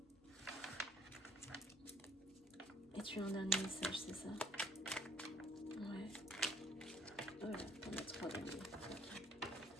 Et tu as un dernier message, c'est ça? Ouais. Oh là, on a 3 derniers. Okay.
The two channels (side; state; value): both; normal; correlation 0.60